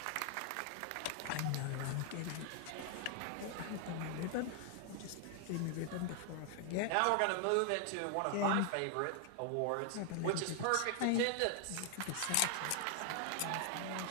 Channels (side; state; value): both; different; correlation 0.00